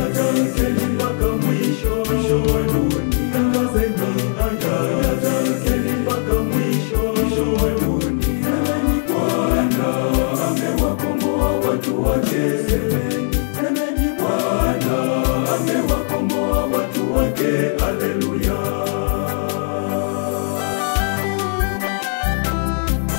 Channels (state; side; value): silent; right; 66 dB below the other